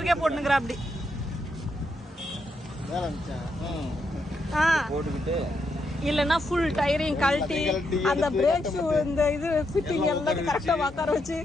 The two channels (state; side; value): normal; both; correlation 0.80